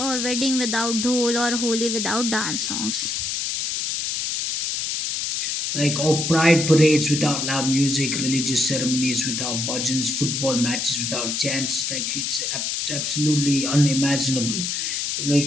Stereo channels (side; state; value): left; noise; hiss, 1 dB below the sound